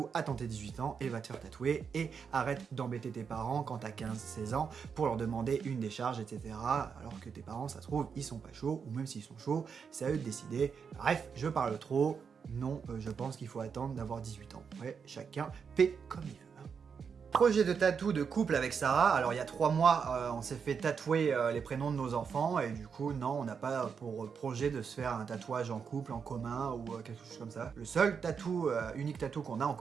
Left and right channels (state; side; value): quieter; left; 6.3 dB